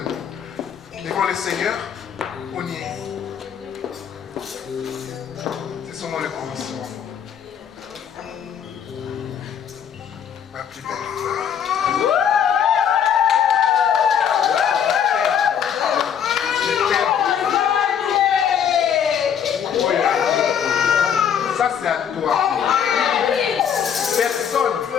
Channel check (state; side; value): quieter; right; 8.2 dB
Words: devant le Seigneur. On y est. C'est seulement le commencement. Ma plus belle femme. Ça c'est à toi.